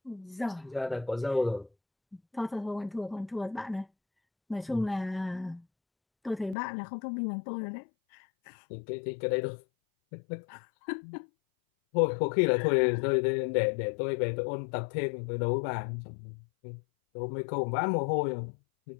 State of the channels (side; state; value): right; drops out; at 6.6 s